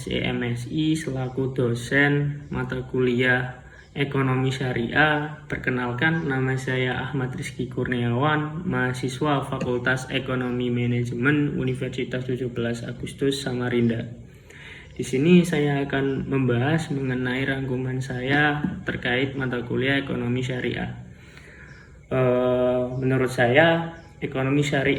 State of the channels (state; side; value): identical; both; correlation 1.00